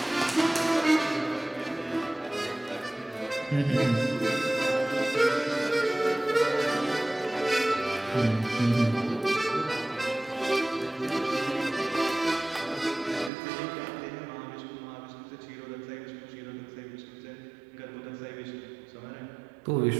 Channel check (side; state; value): left; drops out; at 13.3 s